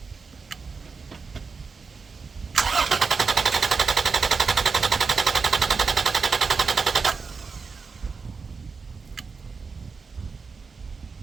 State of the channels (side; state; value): left; quieter; 4.9 dB